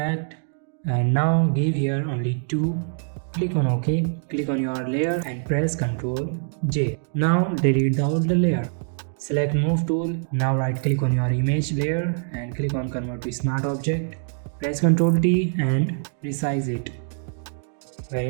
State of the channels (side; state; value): left; silent; 63 dB below the other